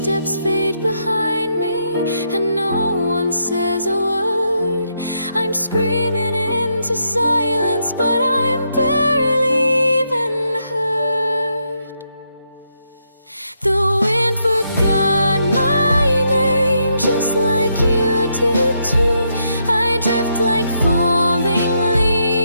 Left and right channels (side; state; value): both; inverted; correlation -0.79